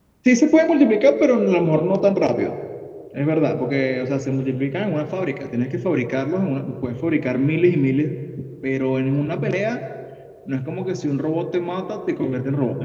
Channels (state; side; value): identical; both; correlation 1.00